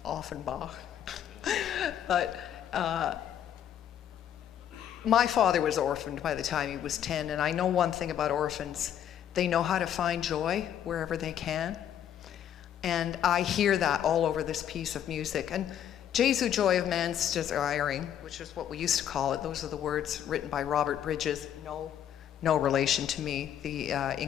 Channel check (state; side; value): quieter; right; 10.0 dB